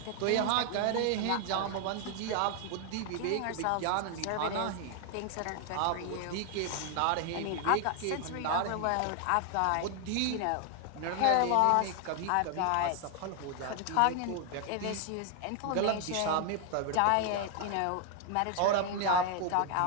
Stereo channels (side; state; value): both; different; correlation 0.00